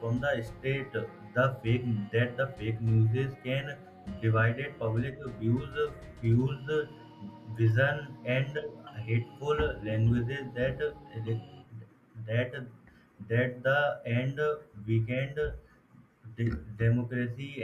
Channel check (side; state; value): both; identical; correlation 1.00